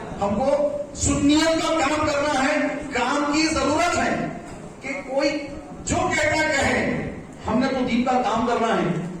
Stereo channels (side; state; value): both; identical; correlation 1.00